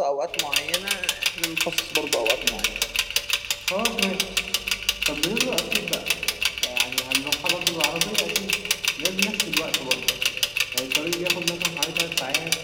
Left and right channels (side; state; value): both; identical; correlation 1.00